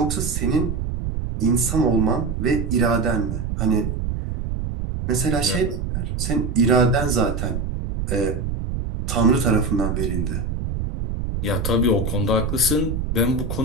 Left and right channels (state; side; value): noise; right; rumble, 3 dB below the sound